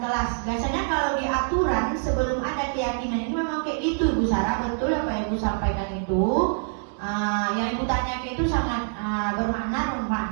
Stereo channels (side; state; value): left; silent; digital silence